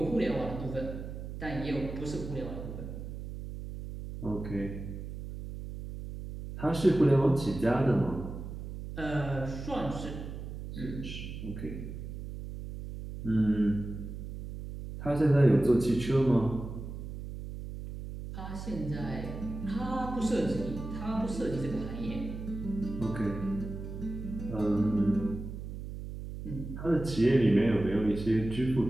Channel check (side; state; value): right; noise; hum, 8 dB below the sound